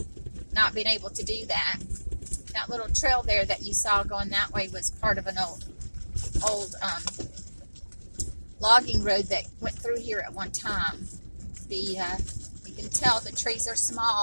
not being able to do that. That little trail there that you saw going that way was part of an old logging road that went through here at one time. You can tell the trees are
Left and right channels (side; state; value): both; inverted; correlation -1.00